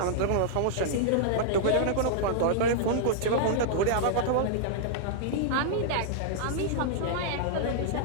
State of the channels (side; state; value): both; different; correlation -0.02